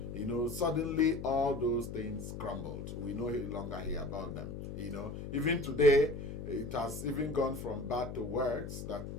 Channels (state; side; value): noise; left; hum, 8 dB below the sound